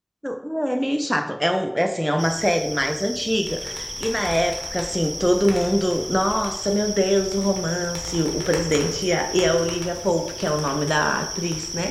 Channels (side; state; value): both; identical; correlation 1.00